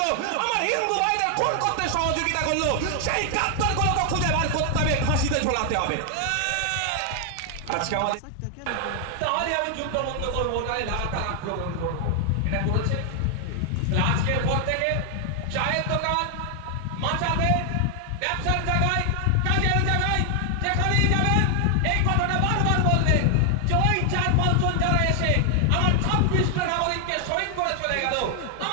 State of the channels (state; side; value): different; both; correlation 0.00